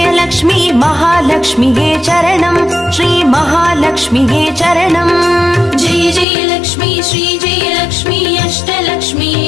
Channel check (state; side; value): drops out; right; at 6.2 s